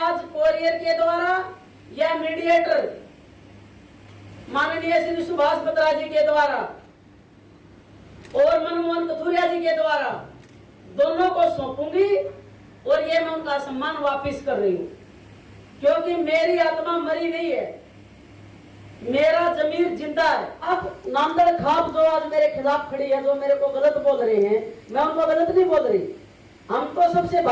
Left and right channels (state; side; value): identical; both; correlation 1.00